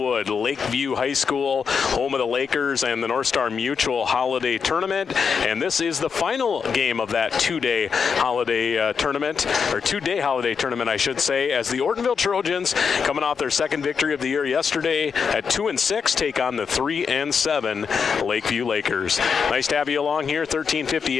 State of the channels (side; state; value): right; quieter; 6.1 dB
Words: Lakeview High School, home of the Lakers and the North Star Mutual Holiday Tournament. And this is the final game of that two-day holiday tournament, I should say, as the Ortonville Trojans, coming off their second victory of the year yesterday at 2-6, take on the 3-7 Lakeview Lakers. Nice to have you along here,